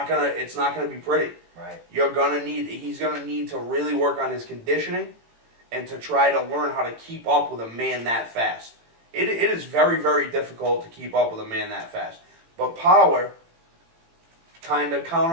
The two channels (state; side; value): late; left; 18 ms